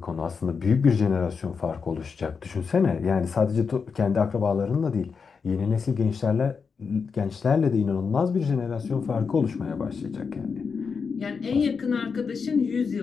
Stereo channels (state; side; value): quieter; right; 5.5 dB